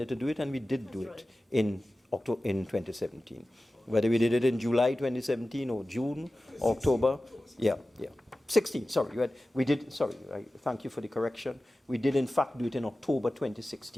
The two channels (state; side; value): normal; both; correlation 0.95